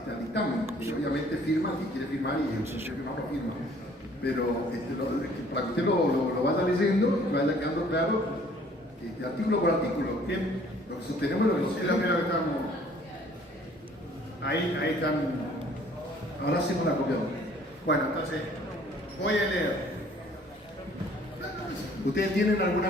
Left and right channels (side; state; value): both; normal; correlation 0.57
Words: dictamen, y obviamente firma, si quiere firmar, y el que firma lo firma, pero para que usted lo vaya leyendo y vaya quedando claro, artículo por artículo, ¿bien? Lo que sostenemos y lo que no Es sostenemos. lo primero que estamos. Ahí están. Ahora hacemos la copia. Bueno, entonces, voy a leer. ¿Ustedes tienen